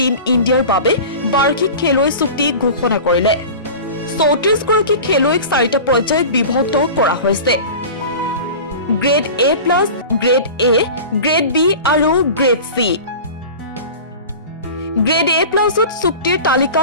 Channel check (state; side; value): inverted; both; correlation -0.35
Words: ইণ্ডিয়াৰ বাবে বাৰ্ষিক খেলুৱৈ চুক্তি ঘোষণা কৰিলে। 34 গৰাকী খেলুৱৈক 4টা পৰ্যায়ত বিভক্ত কৰা হৈছে। Grade A+, grade A, grade B আৰু গ্ৰেড C। গ্ৰেড A+ত চুক্তিৰ